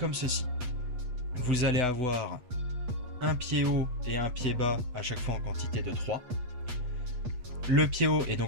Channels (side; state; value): left; late; 8.0 ms